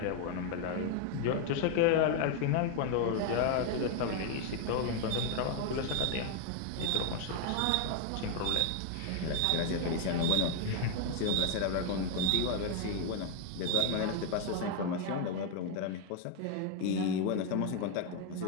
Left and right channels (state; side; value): different; both; correlation 0.01